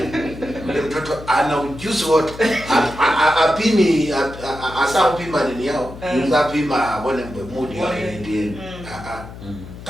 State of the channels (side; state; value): left; noise; hum, 14 dB below the sound